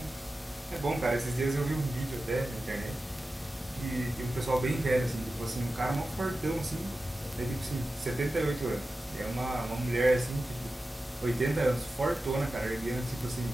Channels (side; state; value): both; normal; correlation 0.94